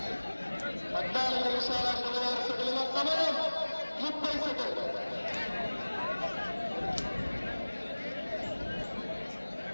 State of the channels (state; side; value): inverted; both; correlation -1.00